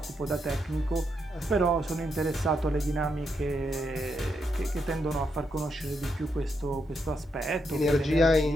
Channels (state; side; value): normal; both; correlation 0.81